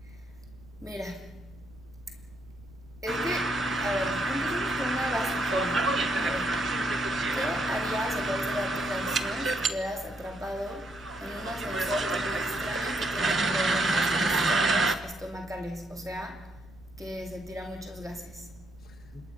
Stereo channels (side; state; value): right; noise; rumble, 22 dB below the sound